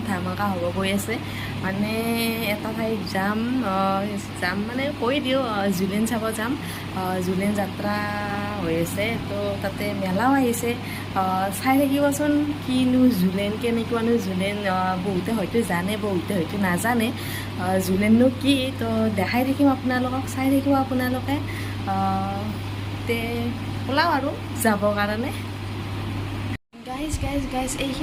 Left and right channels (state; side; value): identical; both; correlation 1.00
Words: ধামাকা হ'ব গৈ আছে। মানে এটা ঠাইত যাম মানে কৈ দিওঁ, জুলিন চাব যাম। জুলিন যাত্ৰা হৈ আছে, তো তাতে মেলাও আহিছে। চাই থাকিবচোন কিনো জুলেন, কেনেকুৱানো জুলেন। বহুতে হয়তো জানে, বহুতে হয়তো নাজানে জুলেননো কি। তো দেখাই থাকিম আপোনালোকক, চাই থাকিব আপোনালোকে। তে ওলাও আৰু যাবৰ কাৰণে। গাইজ